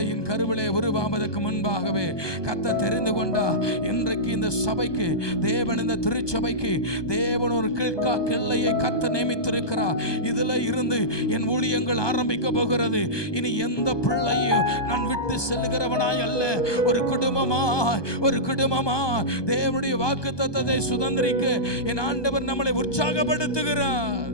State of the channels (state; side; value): late; right; 1.2 ms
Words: கருவிலே உருவாவதற்கு முன்பாகவே கர்த்தர் தெரிந்து கொண்டா. இன்றைக்கு இந்த சபைக்கு தேவன், இந்த திருச்சபைக்கு தேவன் ஒரு கிழ்கா கிள்ளையை கர்த்தர் நியமித்திருக்கிறார். இதுல இருந்து என் ஊழியங்கள் ஆரம்பிக்க போகிறது. இனி எந்த பிள்ளையும் நான் விட்டு செல்லுகிறவனாய் அல்ல, ஒரு குடும்பமா தேவனுடைய வாக்குத்தத்தத்தை சுதந்திரிக்க என் ஆண்டவர் நம்மளை உற்சாகப்படுத்துகிறார்.